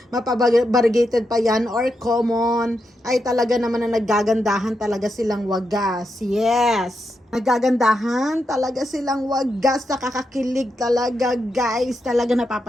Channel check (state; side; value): normal; both; correlation 0.85